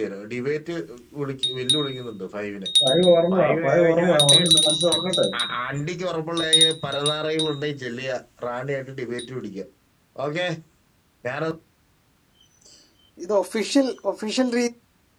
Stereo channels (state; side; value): identical; both; correlation 1.00